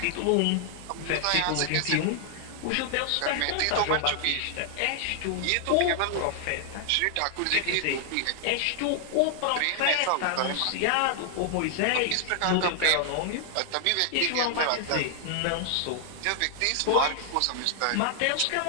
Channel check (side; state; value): both; different; correlation 0.00